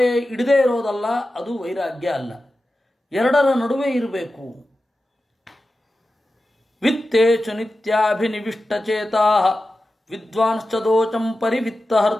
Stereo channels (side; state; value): both; normal; correlation 0.93